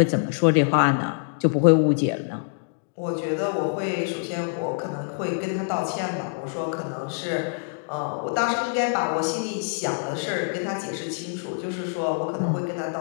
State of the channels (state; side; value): silent; right; digital silence